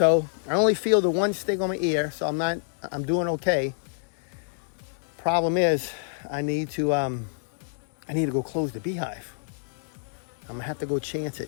I only feel the one sting on my ear, so I'm doing okay. Problem is, I need to go close the beehive. I'm gonna have to go chance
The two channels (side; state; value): right; silent; digital silence